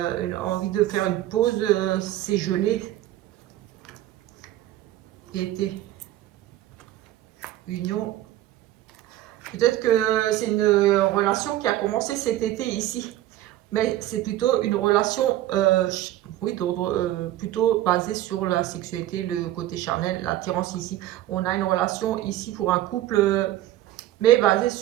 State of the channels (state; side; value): quieter; left; 14.1 dB